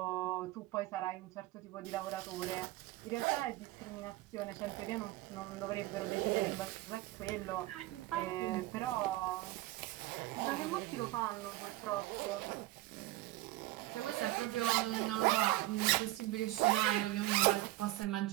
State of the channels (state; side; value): quieter; left; 17.8 dB